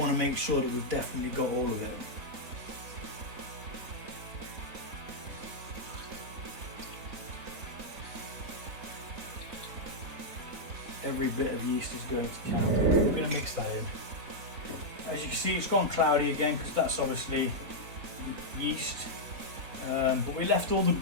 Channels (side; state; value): left; late; 3.9 ms